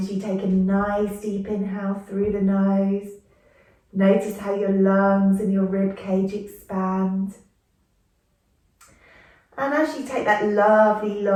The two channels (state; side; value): identical; both; correlation 1.00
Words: you take a nice deep inhale through the nose. Notice how your lungs and your rib cage expand. And as you take that lovely,